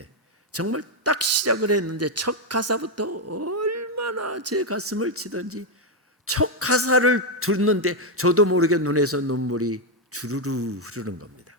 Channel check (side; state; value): both; normal; correlation 0.03